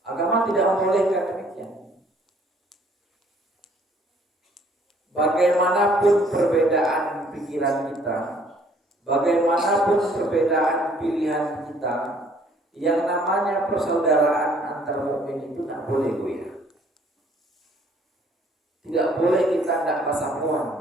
Agama tidak membolehkan demikian. Bagaimanapun perbedaan pikiran kita, bagaimanapun perbedaan pilihan kita, yang namanya persaudaraan antar mukmin itu tidak boleh goyah. Tidak boleh kita tidak pasamuan,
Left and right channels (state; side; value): normal; both; correlation 0.61